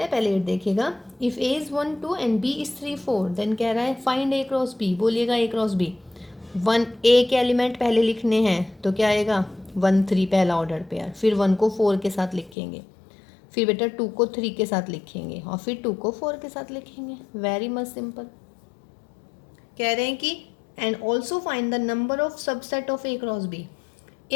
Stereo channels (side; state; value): right; drops out; at 12.6 s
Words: हैं, पहले 8 देखिएगा। If A is 1 2 and B is 3 4, then कह रहा है फाइंड ए क्रॉस बी। बोलिएगा ए क्रॉस बी। 1 ए के एलिमेंट पहले लिखने हैं तो क्या आएगा, 1 3 पहला ऑर्डर पेयर, फिर 1 को 4 के साथ लिखेंगे, फिर बेटा 2 को 3 के साथ लिखेंगे और फिर 2 को 4 के साथ लिखेंगे। Very much simple. कह रहे हैं कि and also find the number of subset of A cross B.